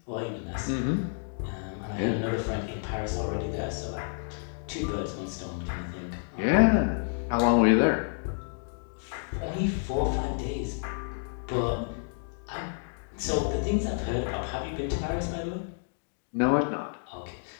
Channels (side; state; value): right; silent; digital silence